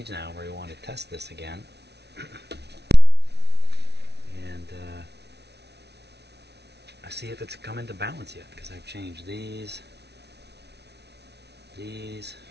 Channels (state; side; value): late; left; 0.49 ms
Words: now where we want to test this again. And I see if it's come into balance yet, because I've changed these. This